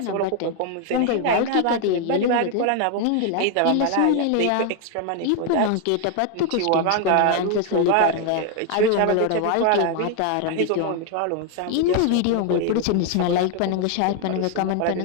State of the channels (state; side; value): different; both; correlation 0.01